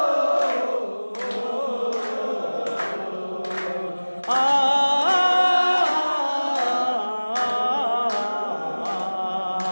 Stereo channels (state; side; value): inverted; both; correlation -1.00